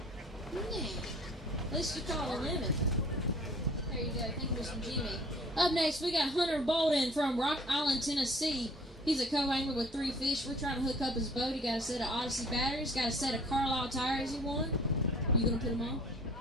Yeah. At least you call a limit. There you go. Thank you, Mr. Jimmy. Up next, we got Hunter Bolden from Rock Island, Tennessee. He's a co-angler with 3 fish. We're trying to hook up his boat. He got a set of Odyssey batteries, got a set of Carlisle tires he won. You gonna put them on?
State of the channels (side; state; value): both; normal; correlation 0.53